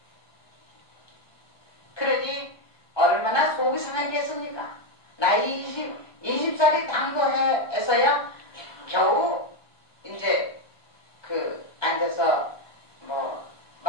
그러니 얼마나 속이 상하겠습니까? 나이 20살이 당도해서야 겨우 이제 그 앉아서 뭐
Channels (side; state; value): right; late; 1.2 ms